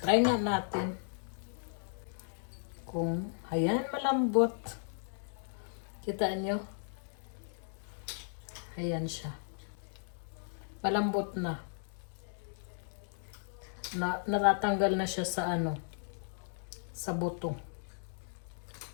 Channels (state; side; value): silent; right; digital silence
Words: nga natin. Kung, ayan, malambot. Kita nyo? Ayan siya. Malambot na. Natatanggal na siya sa sa buto.